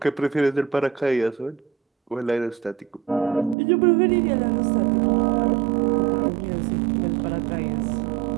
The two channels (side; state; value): left; drops out; at 3.6 s